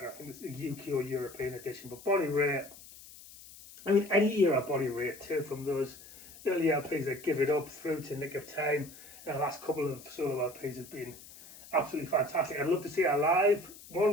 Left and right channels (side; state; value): left; noise; hiss, 19 dB below the sound